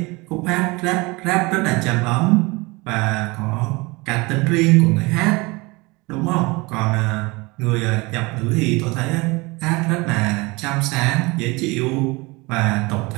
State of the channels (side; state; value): left; quieter; 24.8 dB